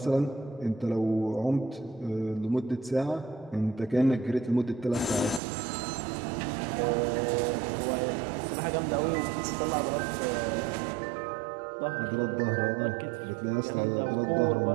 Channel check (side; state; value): left; drops out; at 5.4 s